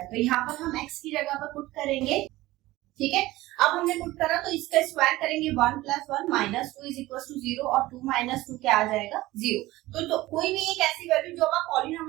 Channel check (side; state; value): left; quieter; 17.9 dB